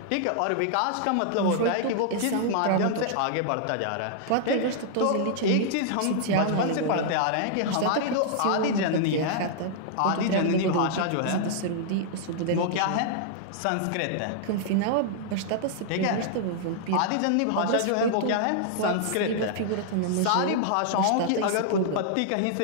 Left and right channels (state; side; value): different; both; correlation -0.01